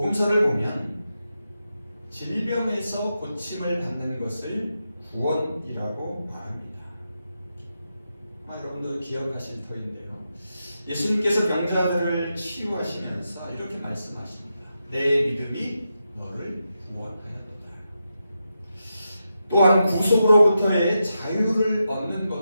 보면 질병에서 고침을 받는 것을 구원이라고 말합니다. 아마 여러분도 기억하실 터인데요. 예수님께서 병자들을 치유하시면서 이렇게 말씀하십니다. 내 믿음이 너를 구원하였도다. 또한 구속으로부터의 자유를 얻는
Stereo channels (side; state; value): both; inverted; correlation -0.87